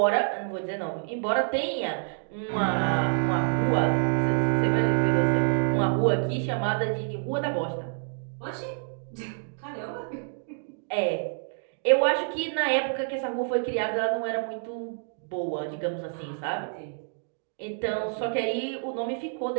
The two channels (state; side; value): silent; left; digital silence